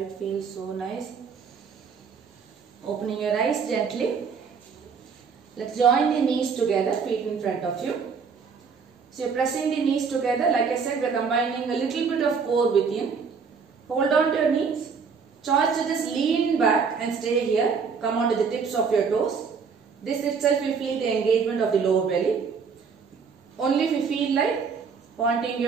feels so nice. Opening your eyes gently. Let's join the knees together, feet in front of you. So you're pressing the knees together. Like I said, we're combining a little bit of core within. Hold on to your knees. Choice to just lean back and stay here. Come on to the tips of your toes. This itself will feel the engagement of the lower belly. Only if you feel like pointing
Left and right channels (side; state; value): left; quieter; 5.7 dB